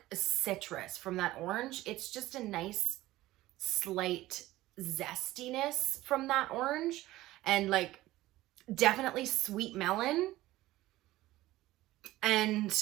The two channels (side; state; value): left; quieter; 16.8 dB